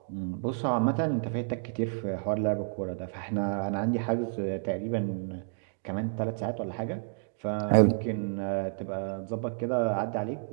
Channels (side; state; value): left; silent; digital silence